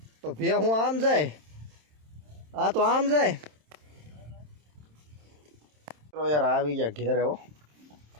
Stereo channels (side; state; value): left; late; 27 ms